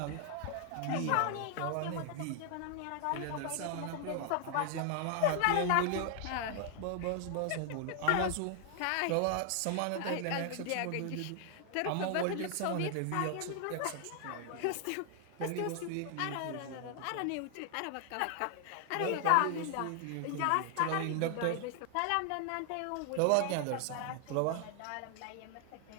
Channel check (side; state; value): both; different; correlation 0.00